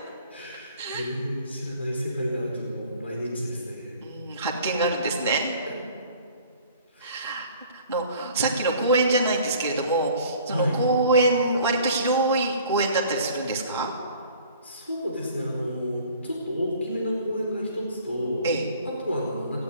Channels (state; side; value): inverted; both; correlation -0.51